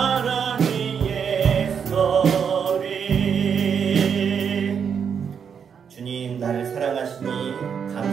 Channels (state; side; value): quieter; left; 7.1 dB